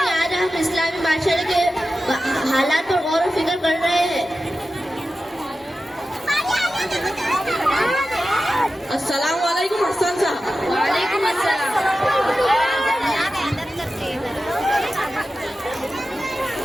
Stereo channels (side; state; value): both; normal; correlation 0.93